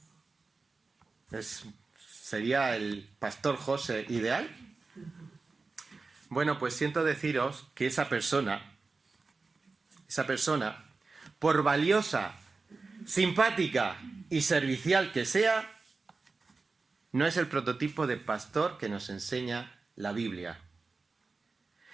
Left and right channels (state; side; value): quieter; left; 4.0 dB